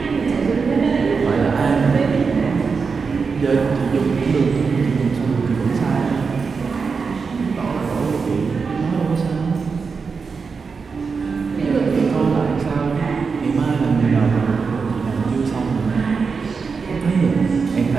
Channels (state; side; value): quieter; left; 5.1 dB